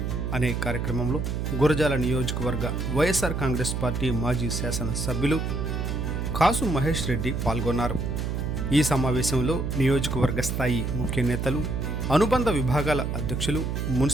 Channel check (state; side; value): noise; right; hum, 2 dB below the sound